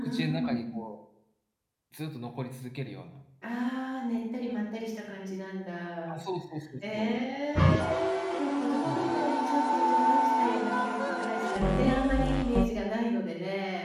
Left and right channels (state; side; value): identical; both; correlation 1.00